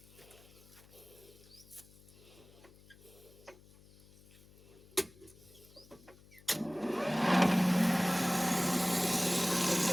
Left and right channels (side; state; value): left; noise; hum, 25 dB below the sound